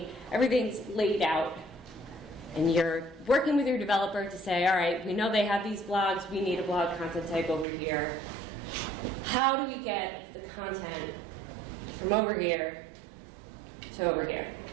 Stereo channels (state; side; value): drops out; left; at 7.7 s